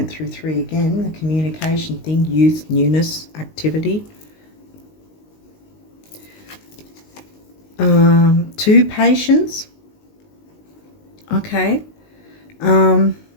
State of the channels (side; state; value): right; late; 19 ms